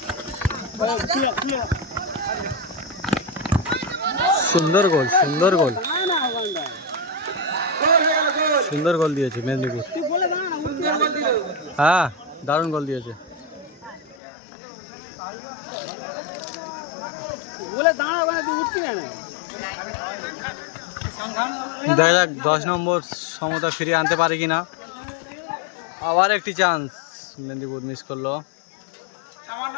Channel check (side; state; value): right; drops out; at 14.2 s